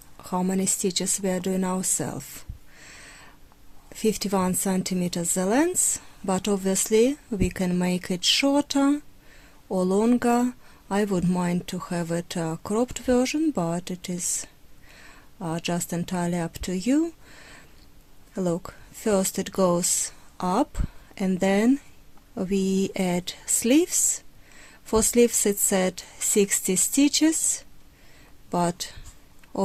how many stitches we are doing ourselves. 51 centimeters the length, but obviously we can make it shorter or longer. I would mind to have it a cropped version, but it is just entirely up to you. Look, first it goes up and then we add sleeves. For sleeves it's at 60 stitches, but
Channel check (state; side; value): identical; both; correlation 1.00